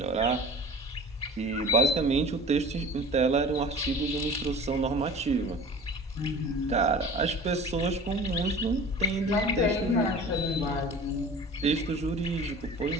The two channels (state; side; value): normal; both; correlation 0.40